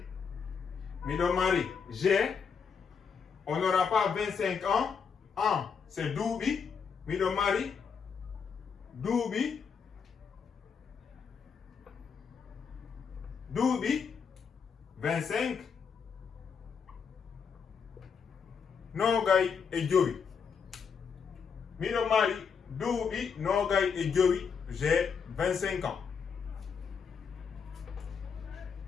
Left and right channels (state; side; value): quieter; right; 6.3 dB